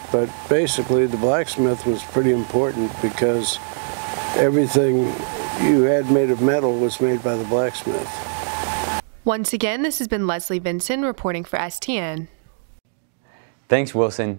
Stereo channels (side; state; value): left; silent; digital silence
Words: But basically the blacksmith was pretty important because everything you had made of metal was made by the blacksmith. Once again, this has been Leslie Vinson reporting for STN. Thanks, Wilson.